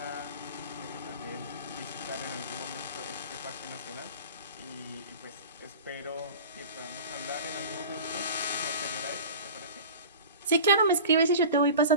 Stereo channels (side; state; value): both; inverted; correlation -0.37